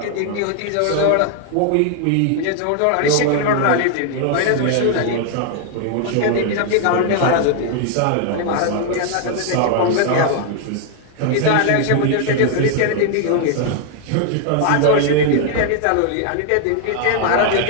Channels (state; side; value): different; both; correlation 0.00